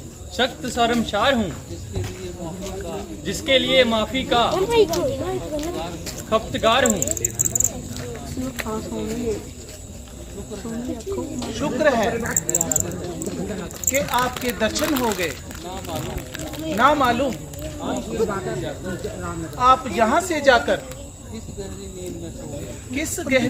सख्त शर्मसार हूँ, जिसके लिए माफी का खपतगार हूँ। शुक्र है कि आपके दर्शन हो गए। ना मालूम आप यहाँ से जाकर किस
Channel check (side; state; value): both; identical; correlation 1.00